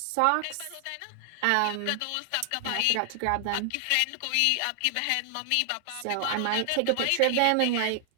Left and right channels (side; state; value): both; different; correlation 0.00